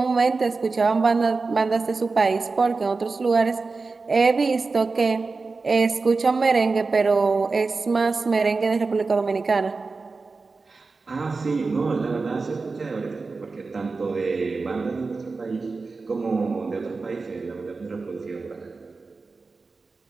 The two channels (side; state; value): left; quieter; 4.1 dB